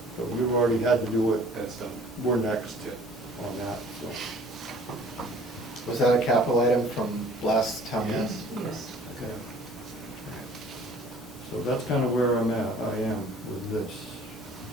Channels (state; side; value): normal; both; correlation 0.52